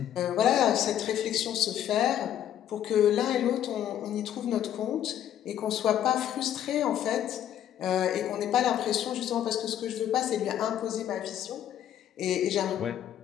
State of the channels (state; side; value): quieter; right; 10.8 dB